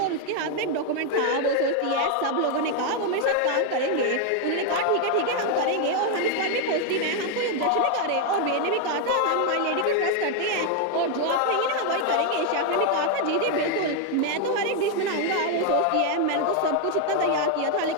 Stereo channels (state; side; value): different; both; correlation 0.01